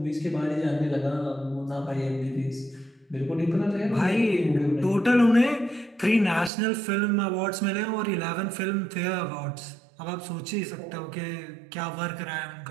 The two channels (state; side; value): drops out; left; at 6.5 s